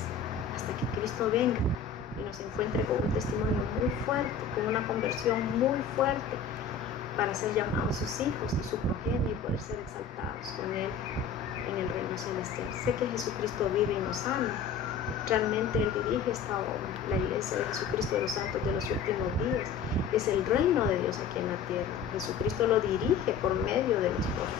hasta que Cristo venga y nos encuentre con un testimonio muy fuerte, con una conversión muy fuerte, para ser llamados sus hijos y su progenie y poder ser exaltados con Él en el reino celestial. Sé que Jesucristo vive y nos ama. Realmente Él dirige esta obra, la iglesia de Jesucristo de los santos de los últimos días. Es el reino de Dios aquí en la tierra. Jesucristo lo dirige por medio de los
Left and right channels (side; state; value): right; quieter; 6.3 dB